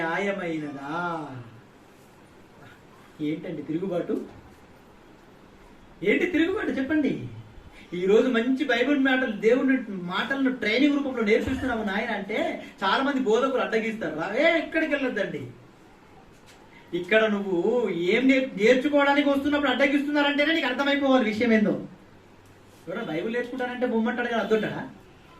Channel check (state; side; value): identical; both; correlation 1.00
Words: ఏంటండి తిరుగుబాటు? ఏంటి తిరుగుబాటు చెప్పండి. ఈరోజు మంచి బైబిల్ మాటలు, దేవుని మాటలను ట్రైనింగ్ రూపంలో నేర్పిస్తున్నాము నాయన అంటే చాలా మంది బోధకులు అడ్డగిస్తారు. రావే ఎక్కడికి వెళ్ళొద్దండి. ఇక్కడ నువ్వు ఏం నేర్చుకోవడానికి వస్తున్నప్పుడు అడ్డగిస్తున్నారంటేనే నీకు అర్థమైపోవాలి విషయం ఏందో. ఎవరైనా బైబిల్ నేర్చుకుంటారంటే బొమ్మంటాడు కదా,